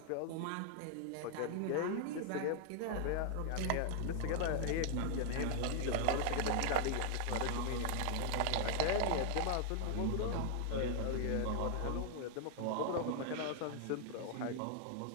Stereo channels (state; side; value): different; both; correlation 0.00